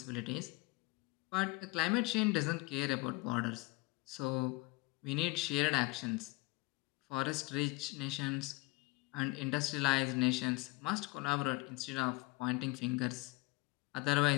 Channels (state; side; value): quieter; right; 24.2 dB